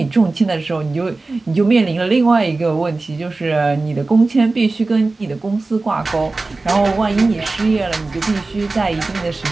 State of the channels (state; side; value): quieter; left; 3.4 dB